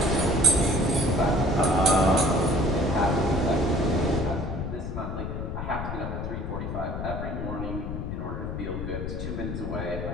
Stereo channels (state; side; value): noise; left; rumble, 5 dB below the sound